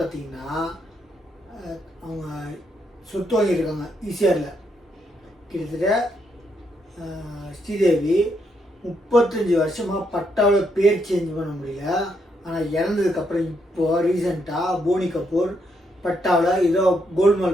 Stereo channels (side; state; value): both; normal; correlation 0.77